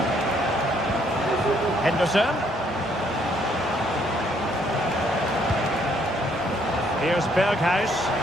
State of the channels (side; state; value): both; normal; correlation 0.68